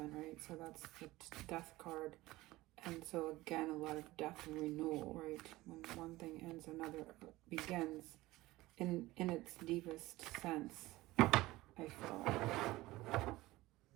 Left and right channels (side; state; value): left; quieter; 18.6 dB